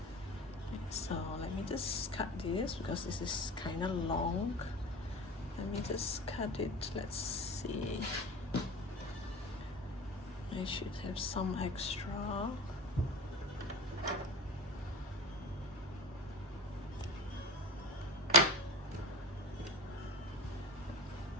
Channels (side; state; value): both; normal; correlation 0.33